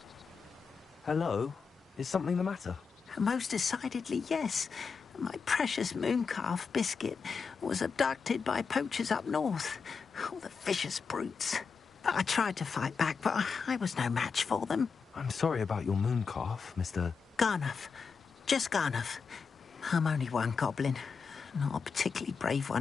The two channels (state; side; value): quieter; right; 5.5 dB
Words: Hello? Is something the matter? Most decidedly, yes. My precious mooncalf, Biscuit, was abducted by poachers up north. All the vicious brutes. I tried to fight back, but I was no match for them. I'm sorry about your mooncalf, Mr. Garnuff. Just Garnuff. I'm only one goblin. Not a particularly brave